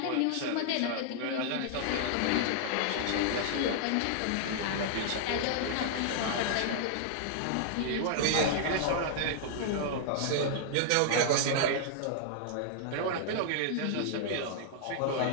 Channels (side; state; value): both; different; correlation -0.01